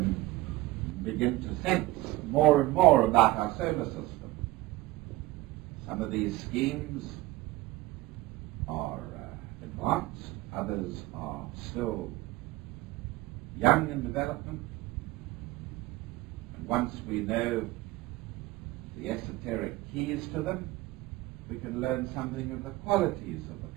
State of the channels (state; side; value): quieter; left; 18.5 dB